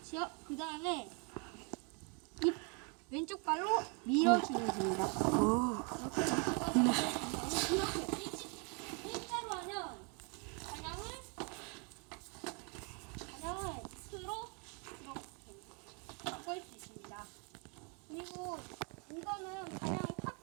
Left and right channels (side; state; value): left; quieter; 35.0 dB